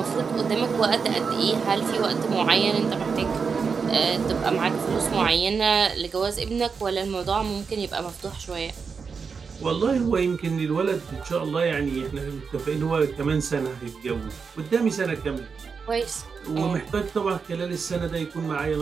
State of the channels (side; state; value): left; quieter; 5.5 dB